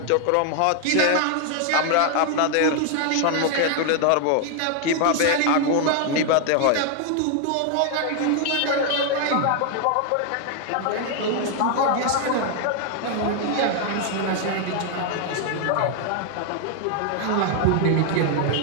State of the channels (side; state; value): both; different; correlation 0.00